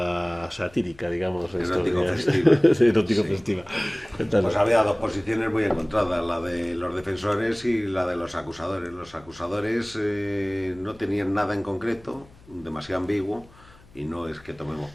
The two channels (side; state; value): left; noise; hum, 25 dB below the sound